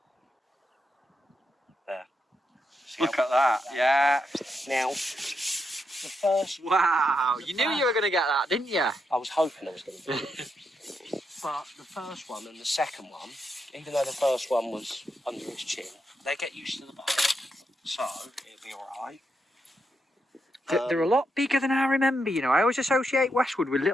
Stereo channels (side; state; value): both; normal; correlation 0.82